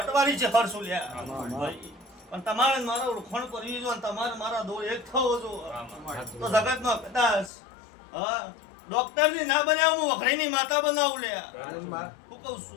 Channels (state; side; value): drops out; right; at 7.5 s